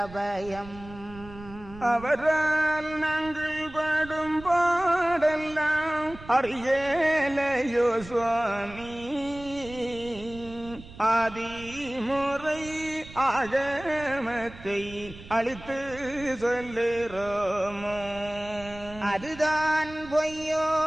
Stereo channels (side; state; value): right; noise; rumble, 17 dB below the sound